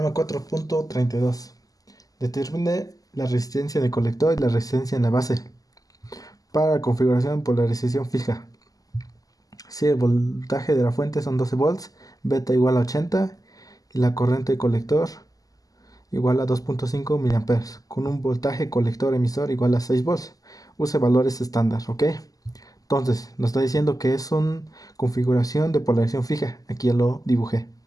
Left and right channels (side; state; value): right; late; 0.17 ms